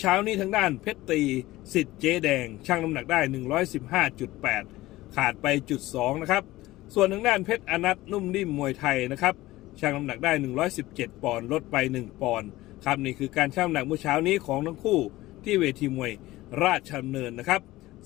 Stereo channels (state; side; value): quieter; right; 17.7 dB